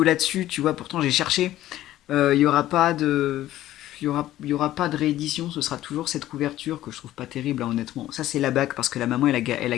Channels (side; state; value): right; quieter; 14.1 dB